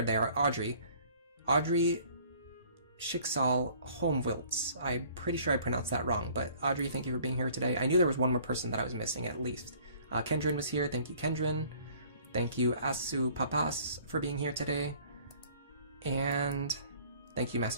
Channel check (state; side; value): inverted; both; correlation -0.55